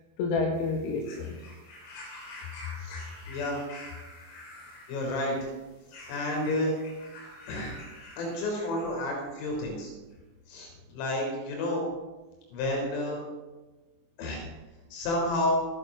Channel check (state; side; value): late; right; 24 ms